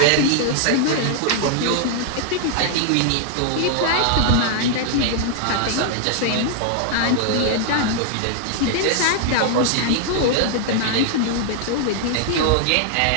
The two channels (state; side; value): different; both; correlation 0.00